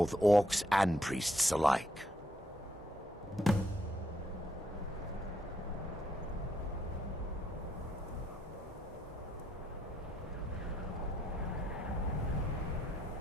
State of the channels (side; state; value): both; normal; correlation 0.75